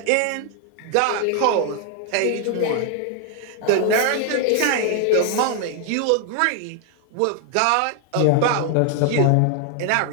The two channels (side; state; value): both; different; correlation 0.00